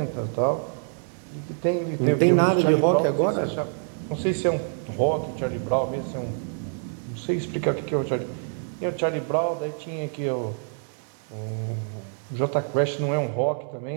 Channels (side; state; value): left; silent; 61 dB below the other